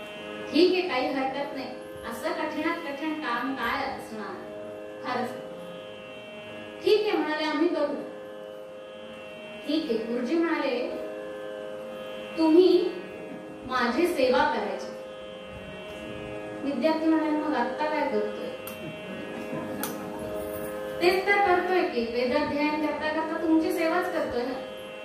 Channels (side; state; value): both; identical; correlation 1.00